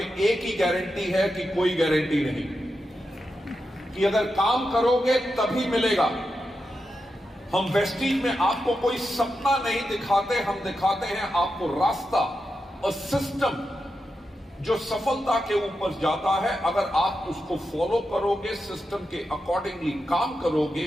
एक ही गारंटी है कि कोई गारंटी नहीं। कि अगर काम करोगे तभी मिलेगा। हम वेस्टीज में आपको कोई सपना नहीं दिखाते, हम दिखाते हैं आपको रास्ता और सिस्टम जो सफलता के ऊपर जाता है। अगर आप उसको फॉलो करोगे, सिस्टम के अकॉर्डिंगली काम करोगे,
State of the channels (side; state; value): both; normal; correlation 0.88